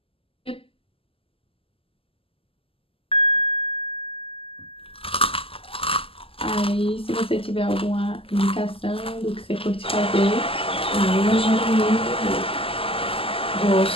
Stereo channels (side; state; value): right; late; 0.26 ms